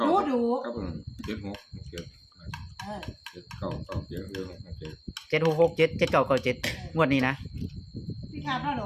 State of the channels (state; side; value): identical; both; correlation 1.00